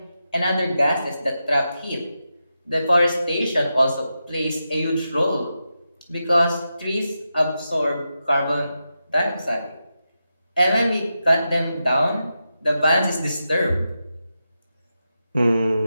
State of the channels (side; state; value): both; inverted; correlation -0.88